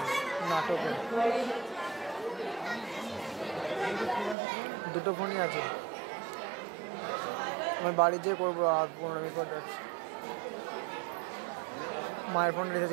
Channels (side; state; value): left; drops out; at 4.4 s